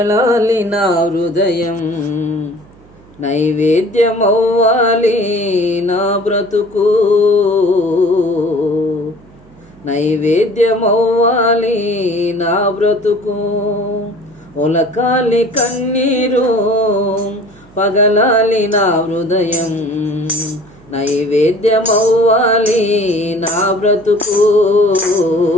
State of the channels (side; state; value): right; noise; hum, 26 dB below the sound